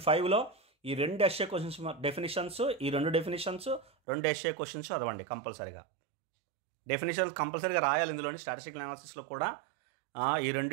5లో ఈ 2 ఎస్ఏ క్వశ్చన్స్ డెఫినేషన్స్, ఈ 2 డెఫినేషన్స్, 2 ఎస్ఏ క్వశ్చన్స్ చదవండి కంపల్సరీగా. డెఫినేషన్స్ కంపల్సరీగా రాయాలి ఇందులోని. స్టాటిస్టికల్ అనాలిసిస్లో కూడా ఈ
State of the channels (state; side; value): drops out; left; at 3.9 s